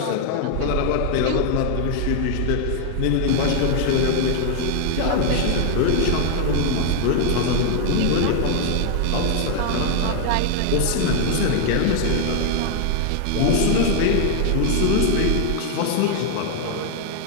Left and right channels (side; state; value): both; different; correlation 0.00